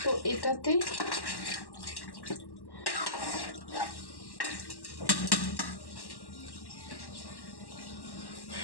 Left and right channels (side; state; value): right; late; 1.1 ms